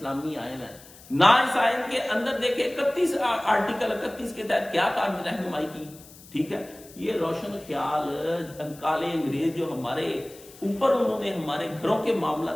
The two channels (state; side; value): noise; left; hiss, 21 dB below the sound